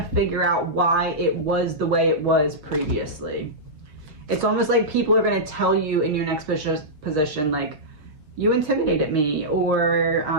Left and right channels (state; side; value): late; left; 6.5 ms